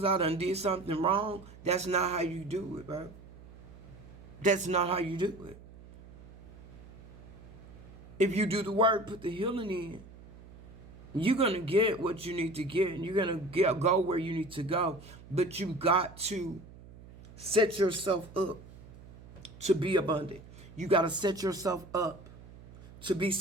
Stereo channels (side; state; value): right; noise; hum, 18 dB below the sound